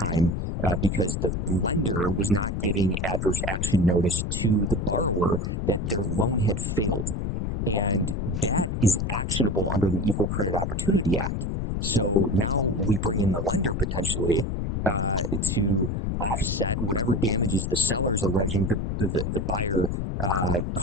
because the lender was not giving adverse action notice to the borrower that their loan had failed. And that is actionable under the Equal Credit Opportunity Act. So now we bring in the lender potentially to offset whatever damages the seller is alleging the buyer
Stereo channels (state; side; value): noise; left; rumble, 1 dB below the sound